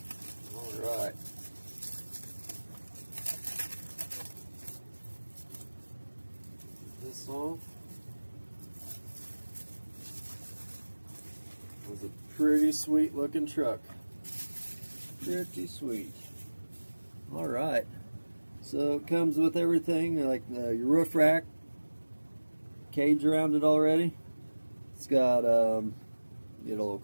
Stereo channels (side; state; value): both; inverted; correlation -1.00